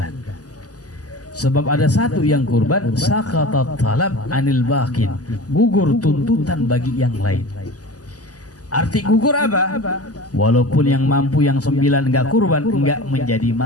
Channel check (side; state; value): right; late; 0.67 ms